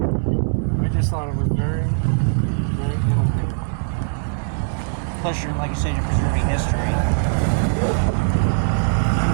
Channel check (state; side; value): silent; left; digital silence